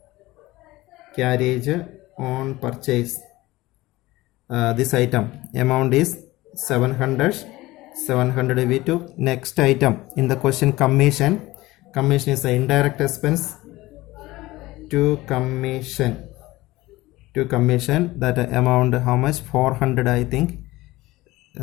Carriage on purchase. This item amount is 700 we took. Next item in the question, commission. Commission is the indirect expense. To commission, that amount how much? 400, I think.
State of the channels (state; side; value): quieter; right; 18.8 dB